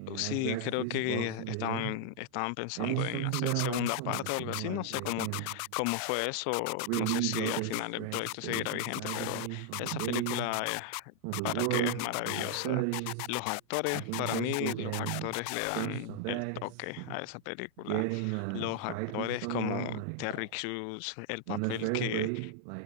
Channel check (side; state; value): both; different; correlation 0.00